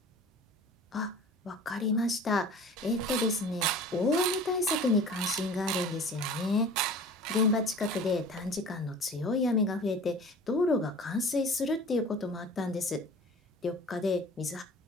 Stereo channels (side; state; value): both; normal; correlation 0.43